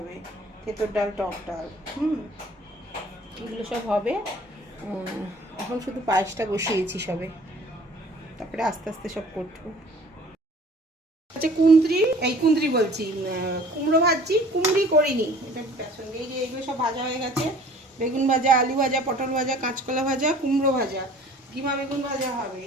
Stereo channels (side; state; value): both; normal; correlation 0.50